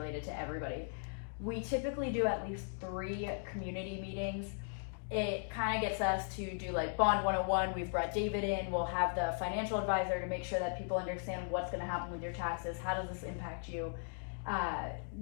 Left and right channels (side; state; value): right; silent; digital silence